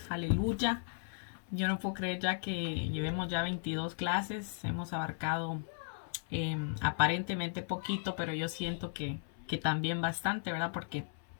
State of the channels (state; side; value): silent; right; 54 dB below the other